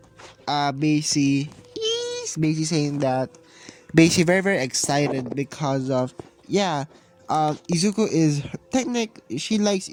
basically saying that, basically very excited because of, yeah, Izuku is she likes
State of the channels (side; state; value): both; identical; correlation 1.00